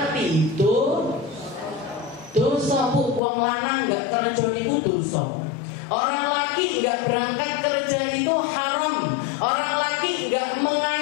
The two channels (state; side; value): drops out; right; at 3.2 s